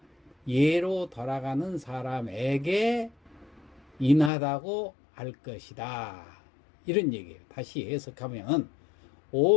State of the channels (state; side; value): drops out; right; at 4.3 s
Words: 예로 돌아가는 사람에게 인하다고 할 것이다. 이런 얘기예요. 다시 해석하면